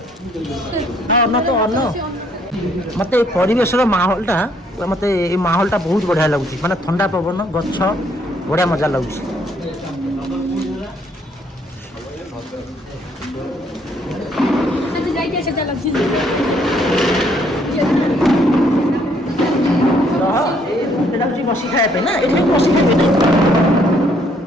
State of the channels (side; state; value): both; normal; correlation 0.67